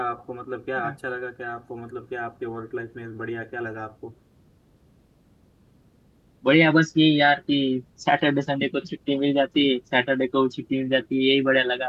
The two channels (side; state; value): both; identical; correlation 1.00